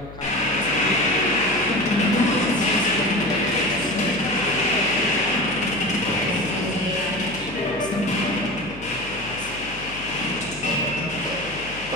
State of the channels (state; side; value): noise; left; hum, 16 dB below the sound